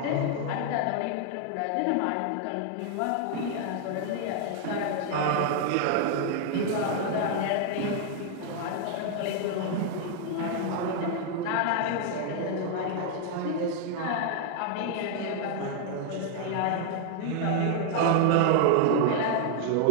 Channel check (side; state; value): both; different; correlation 0.00